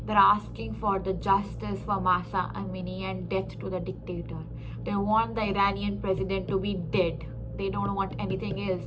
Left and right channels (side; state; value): both; identical; correlation 1.00